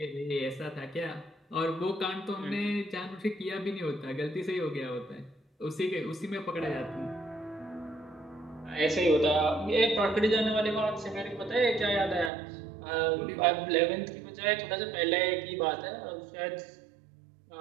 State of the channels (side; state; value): left; drops out; at 12.3 s